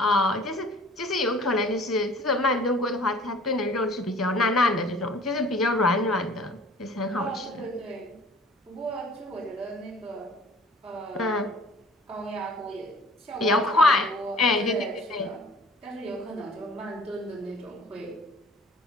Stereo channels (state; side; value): normal; both; correlation 0.49